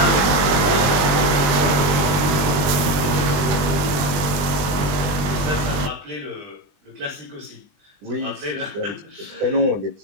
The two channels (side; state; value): left; late; 20 ms